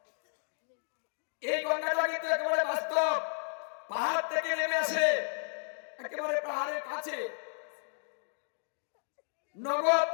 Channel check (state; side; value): silent; right; digital silence